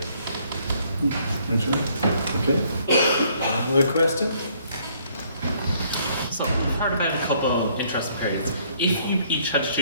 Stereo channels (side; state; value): both; inverted; correlation -0.65